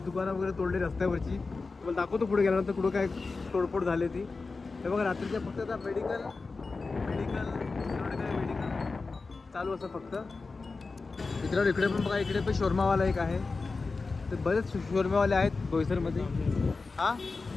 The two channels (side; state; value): right; quieter; 4.0 dB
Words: दुकानं वगैरे तोडले रस्त्यावरची. तुम्हाला दाखवतो पुढे गेल्यानंतर कुठं काय तोडफोड झाली ती. हे बघा रात्रीच्या फक्त आता मेडिकल चालू असं फक्त. मित्रांनो इकडे पण बघा, इकडे पण शोरमावाला एक आहे. तर बरेच शोरमावाले आहेत बोईसरमध्ये. हां